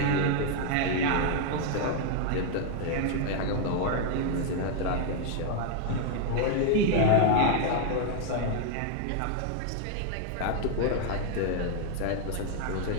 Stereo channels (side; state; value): both; different; correlation 0.00